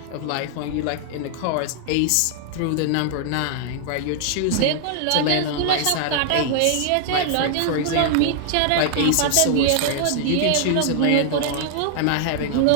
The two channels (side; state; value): both; different; correlation 0.00